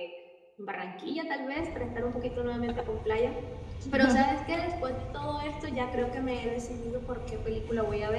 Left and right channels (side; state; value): both; identical; correlation 1.00